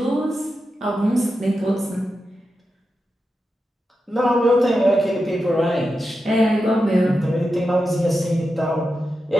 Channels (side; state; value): both; normal; correlation 0.90